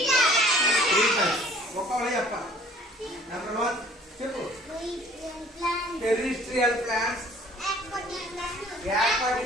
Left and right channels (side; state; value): both; normal; correlation 0.53